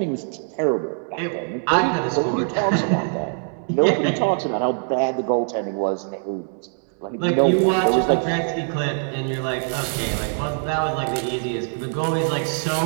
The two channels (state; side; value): silent; left; 63 dB below the other